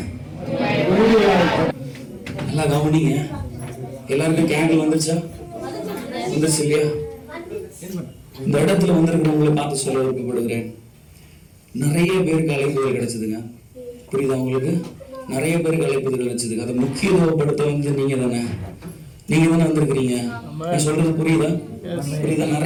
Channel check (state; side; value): identical; both; correlation 1.00